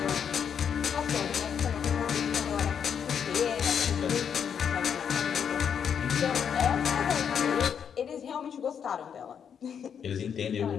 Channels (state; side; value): quieter; right; 7.7 dB